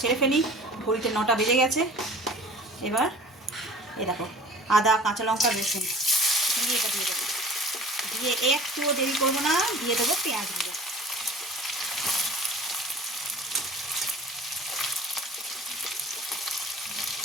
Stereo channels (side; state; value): both; normal; correlation 0.44